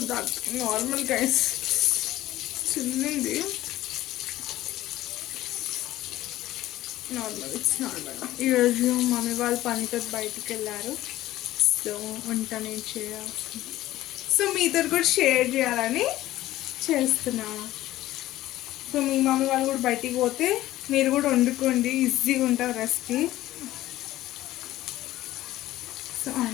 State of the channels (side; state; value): right; quieter; 15.3 dB